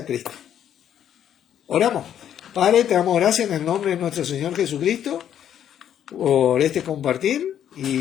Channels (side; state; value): right; quieter; 9.9 dB